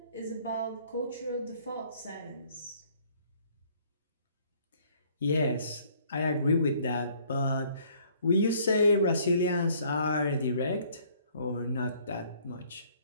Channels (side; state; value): both; inverted; correlation -0.61